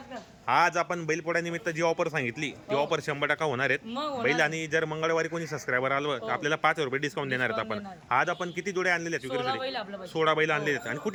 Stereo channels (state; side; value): identical; both; correlation 1.00